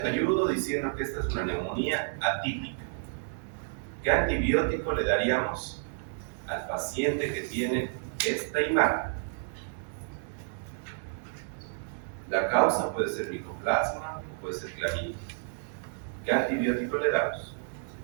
ayudo diciendo que esta es una neumonía atípica. ¿Qué antibiótico le daríamos al paciente que tiene esta imagen? La causa puede ser micoplasma, puede ser clamidia. ¿Qué antibiótico le damos?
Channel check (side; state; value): left; silent; digital silence